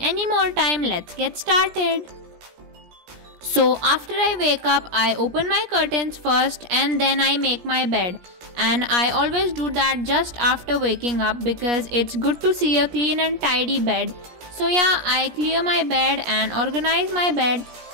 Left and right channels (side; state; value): left; late; 17 ms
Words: more time, let's get started. So after I wake up, I open my curtains first and then I make my bed. And I always do that just after waking up because it's good to see a clean and tidy bed. So yeah, I clear my bed and organize my bed